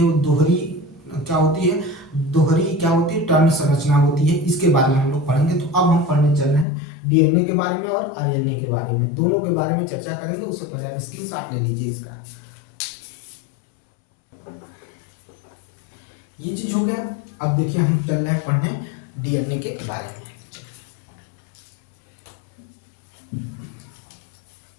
वो दोहरी क्या होती है, दोहरी क्या होती है, टर्न संरचना होती है। इसके बारे में हम लोग पढ़ेंगे। तो अब हम पढ़ने चल रहे हैं डीएनए के बारे में और आरएनए के बारे में, दोनों के बारे में चर्चा करेंगे। उससे पहले आप स्क्रीनशॉट ले लीजिए इसका। ये चीज हो गया। अब देखिए हम चल रहे हैं पढ़ने डीएनए के बारे में।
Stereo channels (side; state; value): right; drops out; at 6.7 s